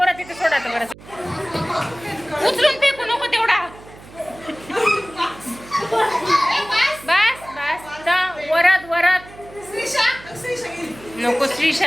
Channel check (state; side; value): noise; right; hum, 20 dB below the sound